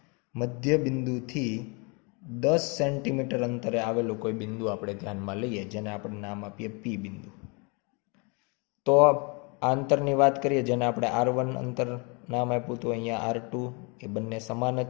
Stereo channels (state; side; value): quieter; right; 31.9 dB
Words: મધ્ય બિંદુથી 10 સેન્ટીમીટર અંતરે આવેલું કોઈ બિંદુ આપણે ધ્યાનમાં લઈએ, જેને આપણે નામ આપીએ P બિંદુ. તો આ અંતરની વાત કરીએ, જેને આપણે R1 અંતર નામ આપ્યું હતું, અહીંયા R2, એ બંને સમાન જ